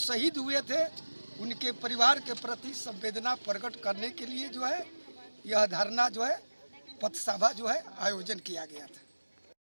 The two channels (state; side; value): inverted; both; correlation -1.00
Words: हुए थे, उनके परिवार के प्रति संवेदना प्रकट करने के लिए जो है यह धरना जो है पथसभा जो है आयोजन किया गया था।